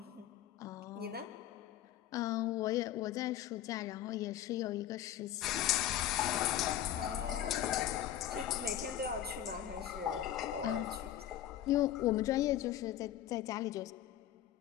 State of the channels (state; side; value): quieter; right; 11.7 dB